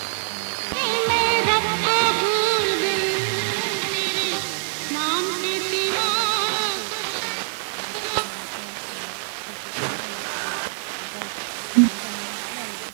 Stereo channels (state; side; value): silent; left; digital silence